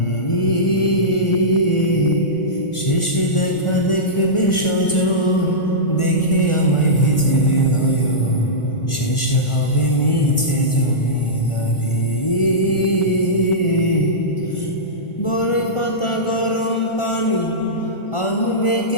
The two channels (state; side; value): late; right; 1.4 ms